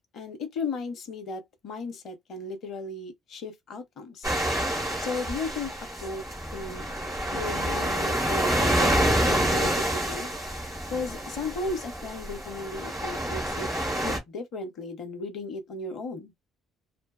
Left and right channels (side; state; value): both; normal; correlation 0.68